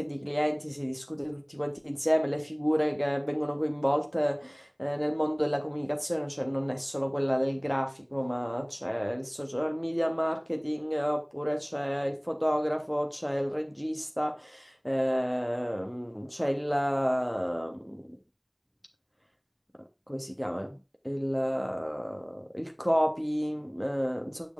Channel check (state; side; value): identical; both; correlation 1.00